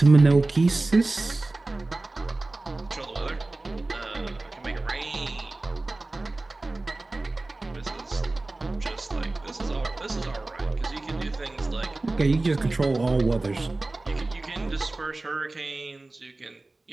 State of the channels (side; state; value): left; quieter; 3.1 dB